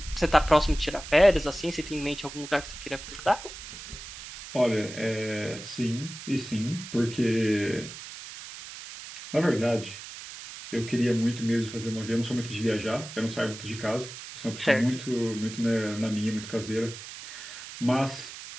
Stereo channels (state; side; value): noise; right; hiss, 12 dB below the sound